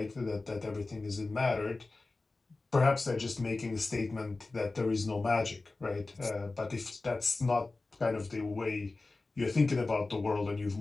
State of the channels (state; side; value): quieter; right; 3.4 dB